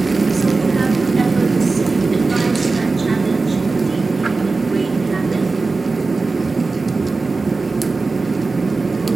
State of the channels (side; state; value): left; quieter; 3.8 dB